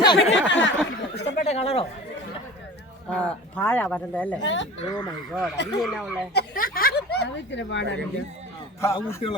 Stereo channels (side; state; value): both; normal; correlation 0.39